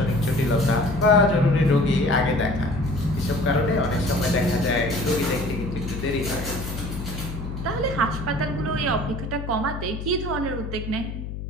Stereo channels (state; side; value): noise; left; hum, 7 dB below the sound